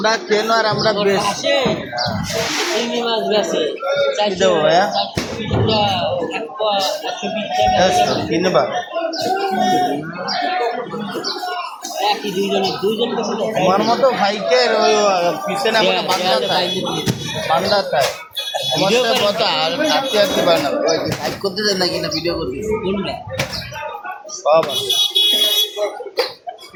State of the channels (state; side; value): identical; both; correlation 1.00